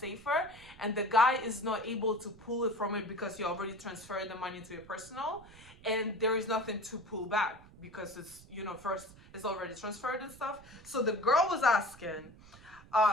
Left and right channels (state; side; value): noise; right; rumble, 21 dB below the sound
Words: and the guy is not able to pull it from it because you already transferred the money to your personal, and there is nothing to pull back because it's, you know, first it's already transferred and stuff. So the girl was asking,